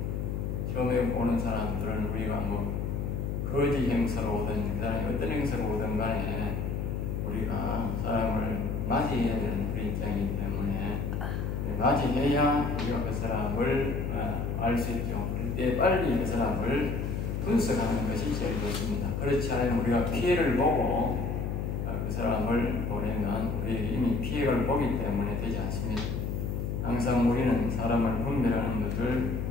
처음에 오는 사람들은 우리가 거지 행사로 오든 그 사람이 어떤 행사로 오든 간에 우리가 사람을 맞이해야 되는 우리 입장이기 때문에 맞이해야 우리가 그 사람을 알 수 있죠. 그때 빨리 그 사람을 분석하는 것이 제일 좋습니다. 그렇지 않으면 우리가 피해를 보고 그 사람을 보내면 우리에게 이미 피해를 보기 때문에 되지 않습니다. 항상 우리는 사람을 분별하는 것을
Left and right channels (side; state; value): left; noise; hum, 2 dB below the sound